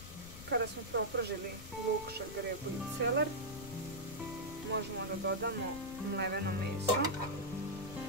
Kada smo propržili luk, šargarepu i celer, možemo da dodamo mleveno meso.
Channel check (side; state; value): left; noise; rumble, 13 dB below the sound